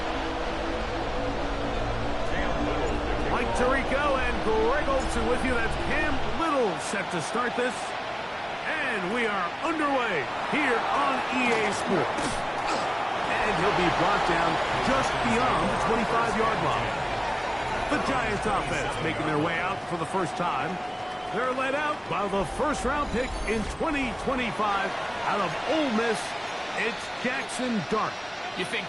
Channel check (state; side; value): identical; both; correlation 1.00